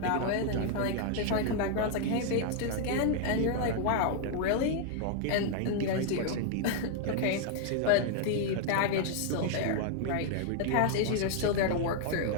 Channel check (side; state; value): both; different; correlation 0.00